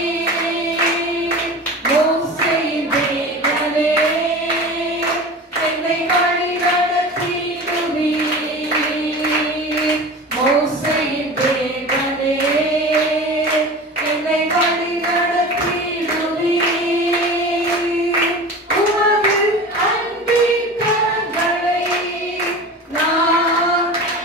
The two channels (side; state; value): both; normal; correlation 0.34